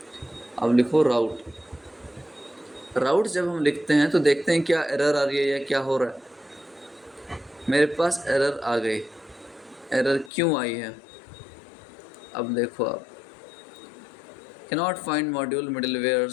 अब लिखो राउट। राउट जब हम लिखते हैं तो देखते हैं क्या एरर आ रही है या क्या हो रहा है। मेरे पास एरर आ गई। एरर क्यों आई है, अब देखो आप, cannot find module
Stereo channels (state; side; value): drops out; right; at 10.3 s